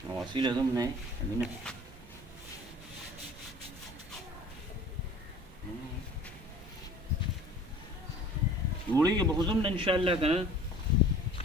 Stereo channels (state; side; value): normal; both; correlation 0.46